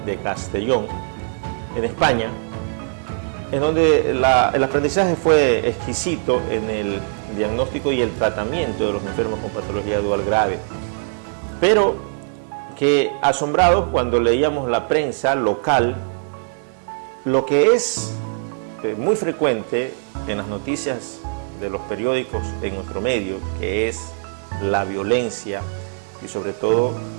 de Castellón, en España, en donde el aprendizaje fue exquisito en el diagnóstico y el tratamiento de los enfermos con patología dual grave, pero que asombrados cuando leíamos la prensa local, lo que es muy frecuente en las noticias de los periódicos en nuestro medio, que es la violencia y sobre todo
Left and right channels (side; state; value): left; silent; 65 dB below the other